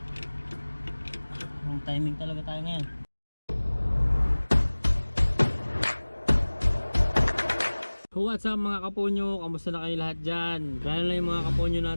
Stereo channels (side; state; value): both; inverted; correlation -1.00